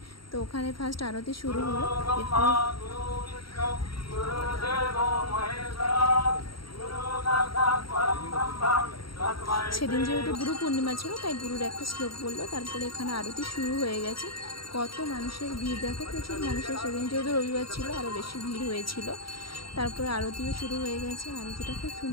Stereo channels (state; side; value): late; right; 0.74 ms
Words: তো ওখানে ফার্স্ট আরতি শুরু হলো। এরপর সেদিন যেহেতু গুরু পূর্ণিমা ছিল, তাই গুরুর একটা শ্লোক বললো। তারপরে এখানে আরতি শুরু হয়ে গেছে। কত মানুষের ভিড় দেখো, প্রচুর মানুষের। সেদিন যেহেতু রবিবার ছিল, আরও বেশি ভিড় হয়েছিল। তারপরে আরতিও শুরু হয়ে গেছে। আরতিটা খুব